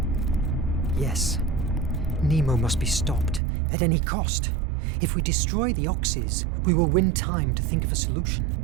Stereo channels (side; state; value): left; drops out; at 3.4 s